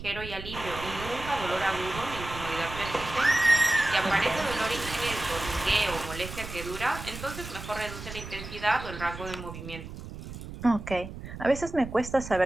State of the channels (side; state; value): right; noise; rumble, 11 dB below the sound